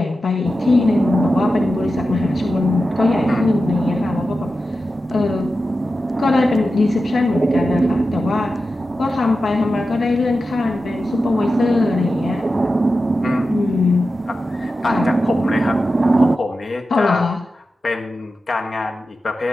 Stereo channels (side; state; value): both; normal; correlation 0.92